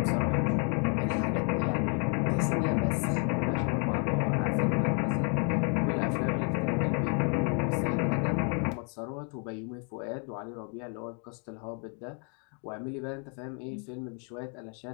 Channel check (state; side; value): quieter; right; 39.6 dB